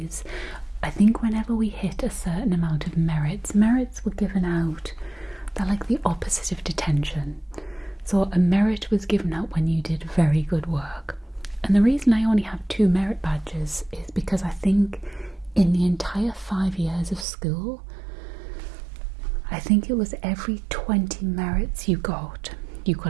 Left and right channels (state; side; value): drops out; left; at 17.2 s